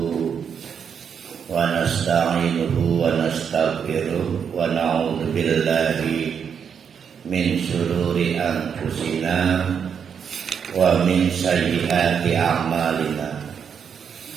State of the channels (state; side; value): quieter; left; 7.2 dB